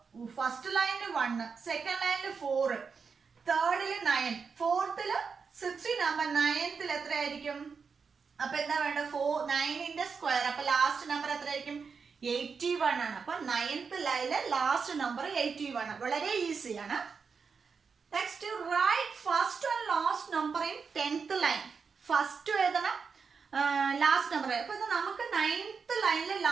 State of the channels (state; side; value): quieter; left; 5.5 dB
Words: ഫസ്റ്റ് ലൈനിൽ 1, സെക്കൻഡ് ലൈനിൽ 4, തേർഡില് 9, ഫോർത്തില് 16 ആകുമ്പോ 9th എത്രയായിരിക്കും? അപ്പൊ എന്താ വേണ്ട? 9ന്റെ സ്ക്വയർ. അപ്പൊ ലാസ്റ്റ് നമ്പർ എത്രയായിരിക്കും? 81 ആണ്. അപ്പൊ 9th ലൈനിലെ ലാസ്റ്റ് നമ്പർ 81. വളരെ ഈസിയാണ്. Next right first and last number in 10th line. First എഴുതണം, ലാസ്റ്റ് നമ്പർ. അപ്പൊ ഇത് നമുക്ക് 9th ലൈനിലെ